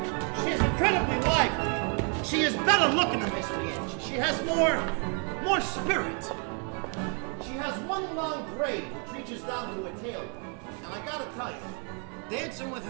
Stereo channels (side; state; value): left; quieter; 39.3 dB